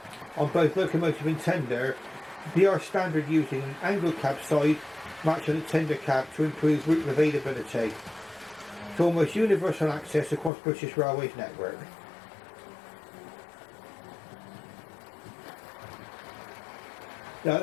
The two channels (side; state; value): right; drops out; at 10.5 s